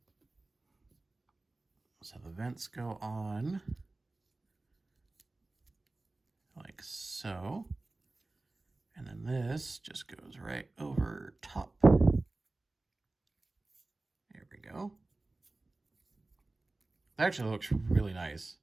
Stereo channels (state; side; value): quieter; left; 3.1 dB